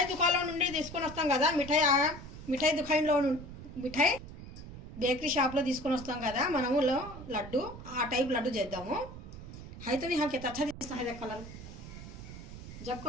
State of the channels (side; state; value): right; noise; rumble, 13 dB below the sound